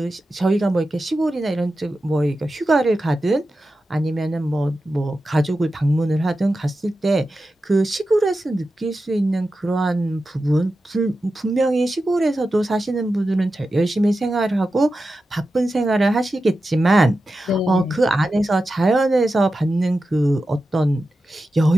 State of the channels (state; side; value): normal; both; correlation 0.92